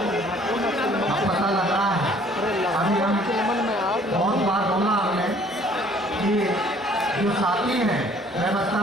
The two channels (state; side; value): normal; both; correlation 0.57